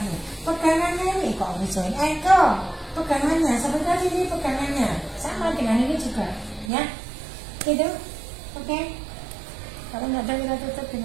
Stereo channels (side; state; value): left; drops out; at 6.7 s